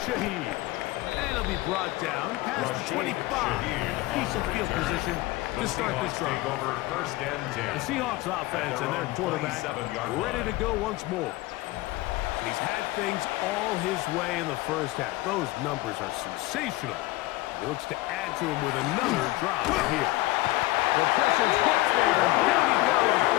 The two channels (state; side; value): quieter; right; 19.1 dB